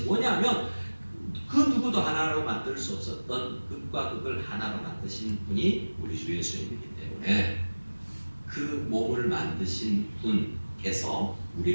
뭐냐면 그 누구도 하나로 만들 수 없었던 극과 극을 하나로 만드신 분이 우리 주 예수님이기 때문에 그 몸을 만드신 분께서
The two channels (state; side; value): inverted; both; correlation -1.00